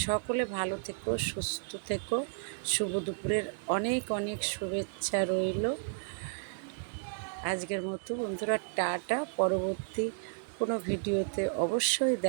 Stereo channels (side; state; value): left; silent; digital silence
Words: সকলে ভালো থেকো, সুস্থ থেকো। শুভ দুপুরের অনেক অনেক শুভেচ্ছা রইল। আজকের মতো বন্ধুরা টাটা। পরবর্তী কোনো ভিডিওতে অবশ্যই